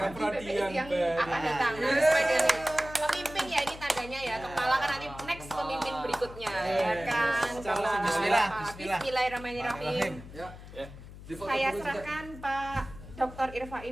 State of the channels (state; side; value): noise; left; hum, 15 dB below the sound